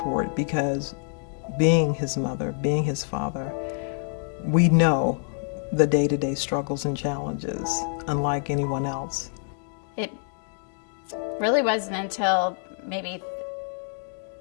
because being his mother, being his father, we know the day-to-day struggles and challenges unlike anyone else. It really wasn't until maybe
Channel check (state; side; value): silent; right; 60 dB below the other